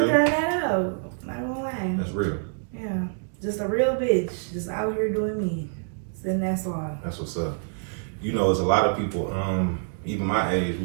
figuring that out. Not gonna lie. That's real. Yeah, just a real bitch, just out here doing me. And that's all. That's what's up. You know, there's a lot of people, even my age,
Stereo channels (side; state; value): left; silent; 61 dB below the other